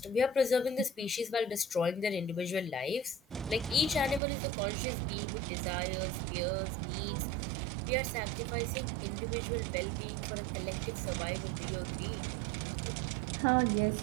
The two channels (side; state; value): left; drops out; at 4.2 s